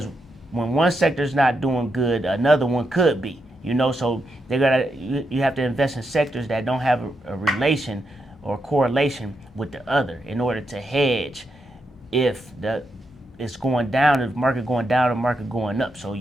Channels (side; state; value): both; normal; correlation 0.83